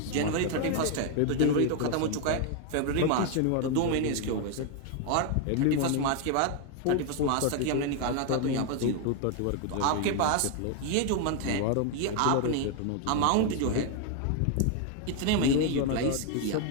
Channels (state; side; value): different; both; correlation 0.01